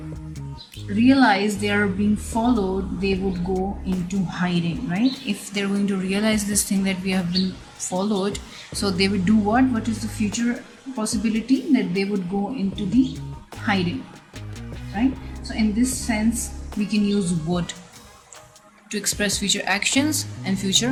realize they are being followed, they would go into hiding, right? If they're going to realize this thing that we have been followed, so they would do what? What is the future possibility? That they would go into the hiding, right? So in this sense, we can use would to express future actions and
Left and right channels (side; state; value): both; identical; correlation 1.00